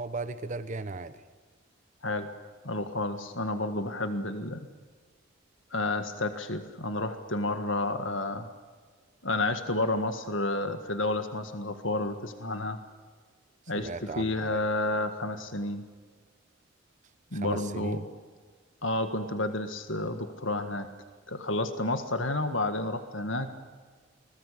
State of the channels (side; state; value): both; normal; correlation 0.03